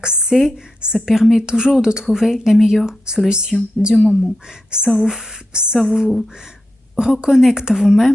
ça permet toujours de trouver la meilleure solution du moment. Ça vous reconnecte à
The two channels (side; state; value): both; normal; correlation 0.88